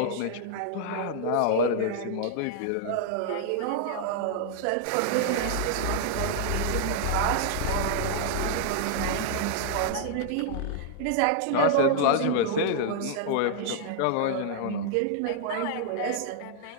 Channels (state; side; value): different; both; correlation -0.01